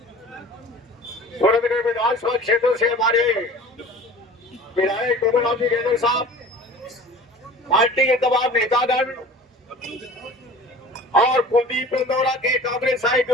सूरतगढ़ विधानसभा क्षेत्र से हमारे विधायक गोविंद गेजर साहब, पार्टी के तमाम नेतागण और कुलदीप इंदौरा के कांग्रेस के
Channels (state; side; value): normal; both; correlation 0.42